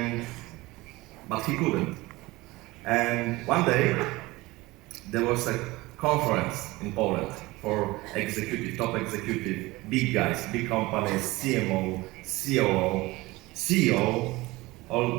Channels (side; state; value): left; quieter; 20.8 dB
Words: But he couldn't. And one day, there was a conference in Poland for top executive, big guys, big companies, CMO, COO, CEO,